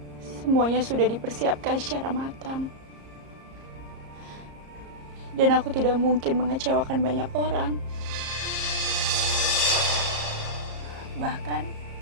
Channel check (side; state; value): left; late; 34 ms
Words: Semuanya sudah dipersiapkan secara matang. Dan aku tidak mungkin mengecewakan banyak orang. Bahkan,